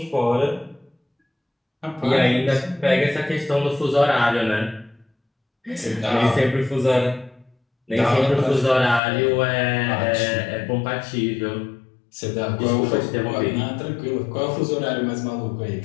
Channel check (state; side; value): drops out; right; at 9.0 s